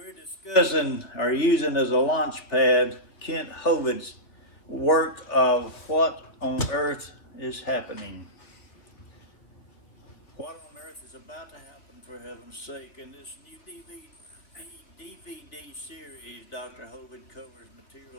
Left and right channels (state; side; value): late; right; 3.0 ms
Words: discussing or using as a launch pad Kent Hovitt's work of What on Earth is Happening. What on earth is about to happen, for heaven's sake? In this new DVD series, Dr. Hovitt covers